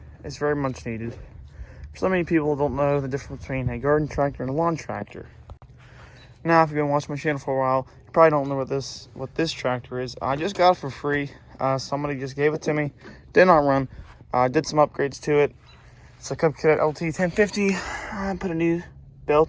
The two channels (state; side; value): identical; both; correlation 1.00